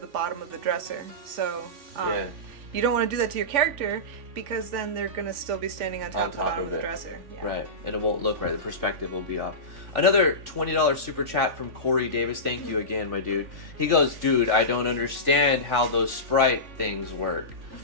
the bottom of the dresser. So you don't want to do that to your character, because then they're going to still be standing on top of the bottom of the dresser. Yeah. Right, and it won't look right. The perspective will be off. Another $20 super chat from Corey Davis. Thank you again, my dude. He goes, dude, I don't understand how those sprite things work.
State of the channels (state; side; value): late; left; 3.5 ms